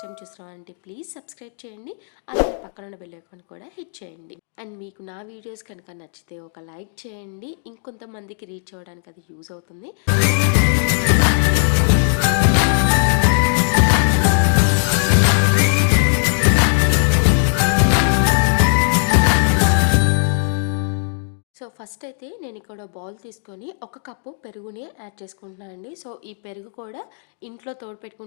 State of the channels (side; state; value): right; silent; 62 dB below the other